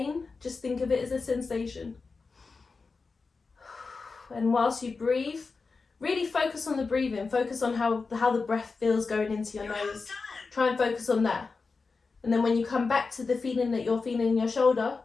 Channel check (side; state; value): right; quieter; 4.4 dB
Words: just think of it as a sensation. And whilst you breathe, really focus on the breathing, focus on how the breath feels going into your nose. Try and focus on that. And then when you come back to the feeling that you're feeling in your shoulder,